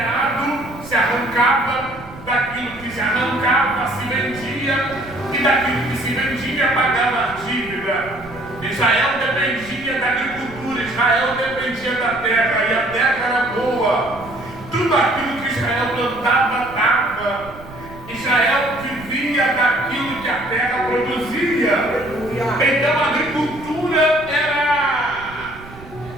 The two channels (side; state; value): right; noise; rumble, 18 dB below the sound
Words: se arrancava, daquilo que se arrancava se vendia, e daquilo que se vendia pagava a dívida. Israel dependia da agricultura, Israel dependia da terra, e a terra era boa. Tudo aquilo que Israel plantava dava. Israel vivia daquilo que a terra produzia. Então a agricultura